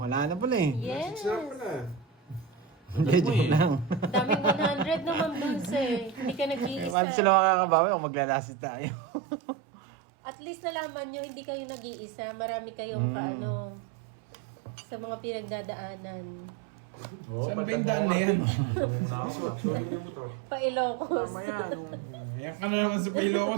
na pala eh. Yes. Sarap pala. Hindi, joke lang. Daming 100 naman Dulce. Hindi ka Paano nag-iisa. sila makakabawi kung maglalasit tayo? At least nalaman nyo, hindi kayo nag-iisa. Marami kayong kaano sa mga pinagdadaanan. Saan ba yung daan na yan? Pa-Ilocos. Tama yan. Yan ka na naman sa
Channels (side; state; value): left; drops out; at 7.0 s